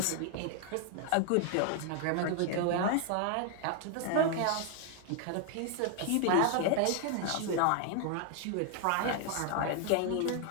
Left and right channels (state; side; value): different; both; correlation 0.00